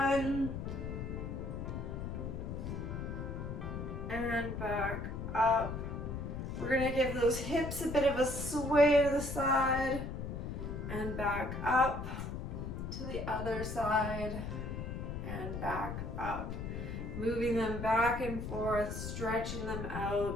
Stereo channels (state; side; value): noise; left; rumble, 5 dB below the sound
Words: And back up. We're going to give those hips a bit of a sway to the side. And back up to the other side. And back up. Moving them back and forth, stretching them